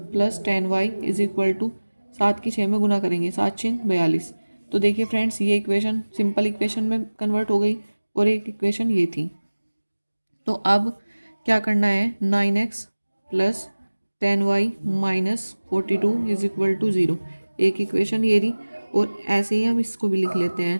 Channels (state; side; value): inverted; both; correlation -1.00